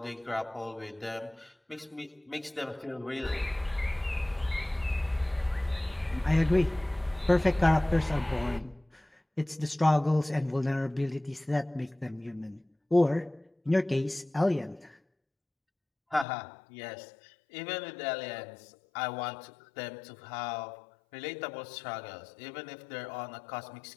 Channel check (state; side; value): drops out; right; at 16.2 s